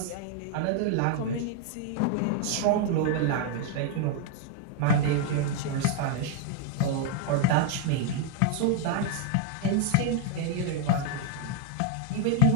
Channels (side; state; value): both; different; correlation 0.00